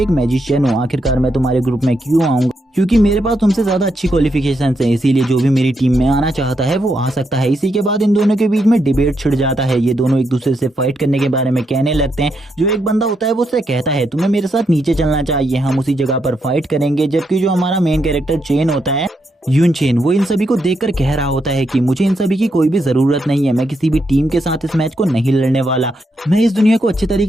मैजिशियन हूँ, आखिरकार मैं तुम्हारे ग्रुप में क्यों आऊंगा, क्योंकि मेरे पास तुमसे ज्यादा अच्छी क्वालिफिकेशंस हैं, इसीलिए जो भी मेरी टीम में आना चाहता है वो आ सकता है। इसी के बाद इन दोनों के बीच में डिबेट छिड़ जाता है। ये दोनों एक दूसरे से फाइट करने के बारे में कहने लगते हैं। जो एक बंदा होता है वो उससे कहता है तुम्हें मेरे साथ नीचे चलना चाहिए, हम उसी जगह पर फाइट करेंगे। जबकि जो हमारा मेन कैरेक्टर चेन होता है, यून चेन, वो इन सभी को देखकर कह रहा होता है कि मुझे इन सभी की कोई भी जरूरत नहीं है, मैं किसी भी टीम के साथ इस मैच को नहीं लड़ने वाला, मैं इस दुनिया को अच्छे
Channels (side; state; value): both; normal; correlation 0.80